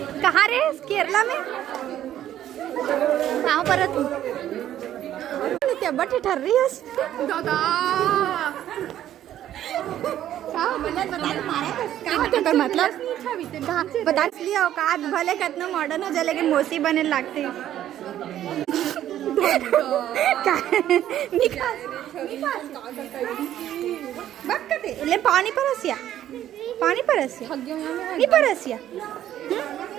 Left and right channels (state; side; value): quieter; left; 11.8 dB